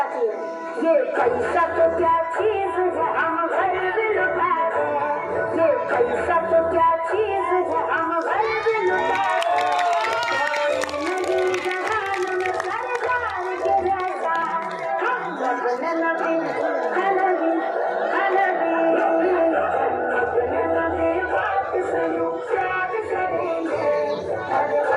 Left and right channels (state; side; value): identical; both; correlation 1.00